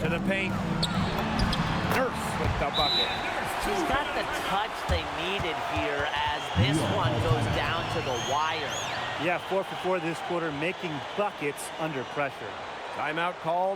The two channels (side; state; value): both; identical; correlation 1.00